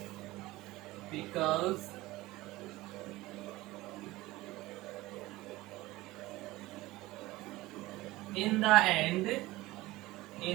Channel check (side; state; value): left; quieter; 18.9 dB